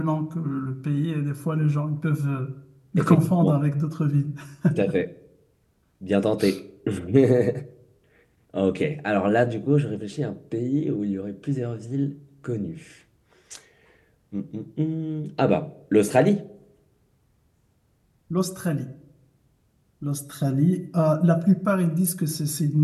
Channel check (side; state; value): both; identical; correlation 1.00